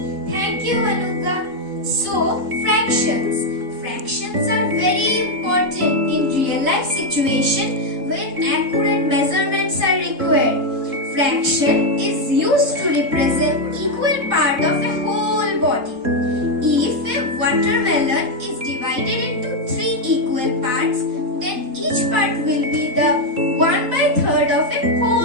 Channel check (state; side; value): late; left; 3.7 ms